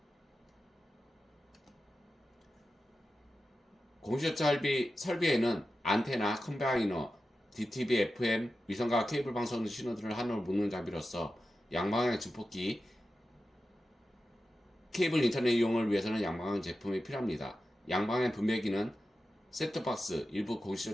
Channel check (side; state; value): both; normal; correlation 0.92